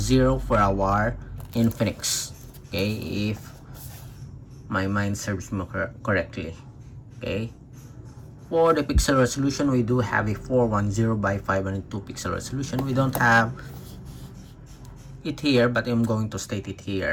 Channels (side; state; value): both; identical; correlation 1.00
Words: for our Infinix. Okay, if my mind serves me correctly. Okay, for the pixel resolution, we do have a 410 by 502 pixel resolution. We don't have it here, but I'm going to state it